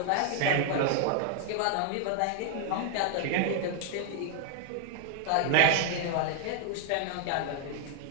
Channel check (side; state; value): both; different; correlation 0.00